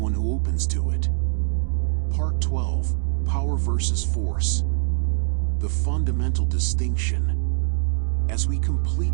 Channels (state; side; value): silent; left; 60 dB below the other